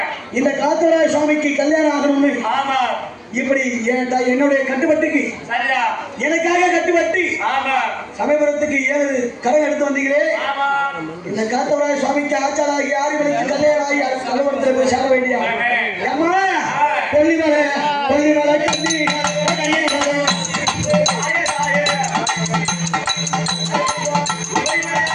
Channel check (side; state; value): both; identical; correlation 1.00